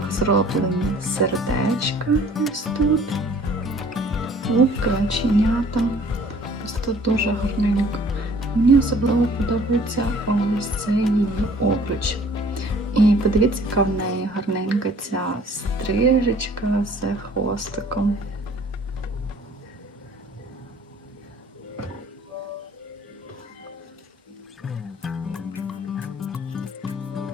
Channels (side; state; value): both; normal; correlation 0.54